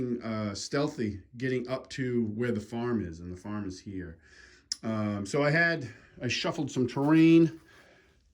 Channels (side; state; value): both; identical; correlation 1.00